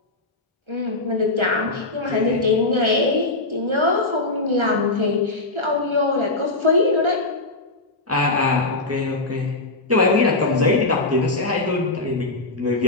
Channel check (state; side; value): quieter; right; 3.0 dB